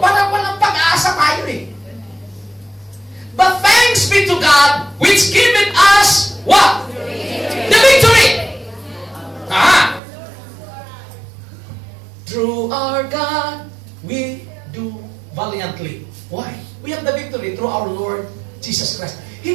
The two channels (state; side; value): drops out; left; at 10.0 s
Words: walang pag-asa tayo eh. But thanks be to God, which giveth us, what? The victory! Through our God, we do valiantly. Why? We have the victory through our Lord Jesus Christ.